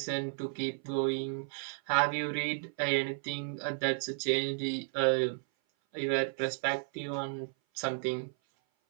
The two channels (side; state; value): left; silent; 56 dB below the other